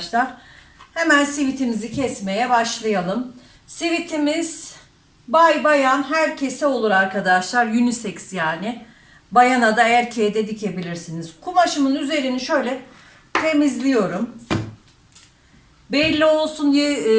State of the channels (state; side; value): identical; both; correlation 1.00